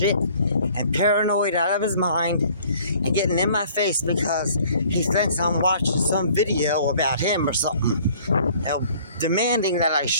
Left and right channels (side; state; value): both; inverted; correlation -0.55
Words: and paranoid out of his mind and getting in my face because he thinks I'm watching some video about him or something. Demanding that I